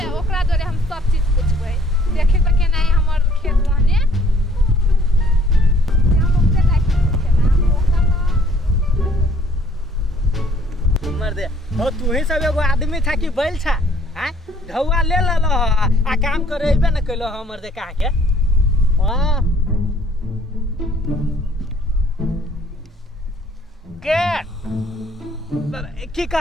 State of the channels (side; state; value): both; normal; correlation 0.60